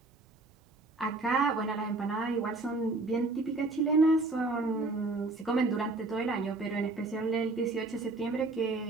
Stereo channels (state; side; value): quieter; left; 3.2 dB